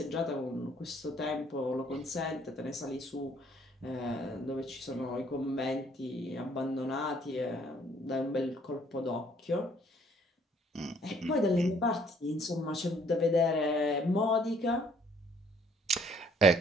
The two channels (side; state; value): both; normal; correlation 0.62